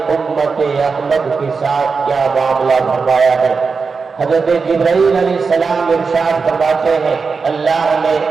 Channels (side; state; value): left; quieter; 4.9 dB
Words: امت احمد کے ساتھ کیا معاملہ فرمایا ہے. حضرت جبرائیل علیہ السلام ارشاد فرماتے ہیں اللہ نے